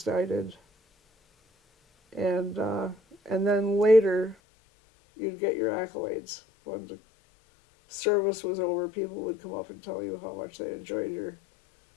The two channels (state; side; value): drops out; right; at 4.4 s